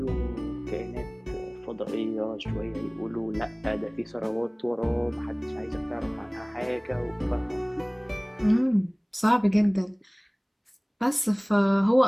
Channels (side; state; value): both; identical; correlation 1.00